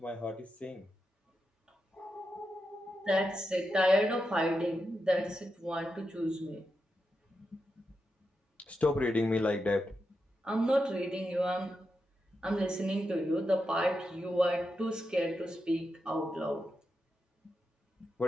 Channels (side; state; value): both; normal; correlation 0.87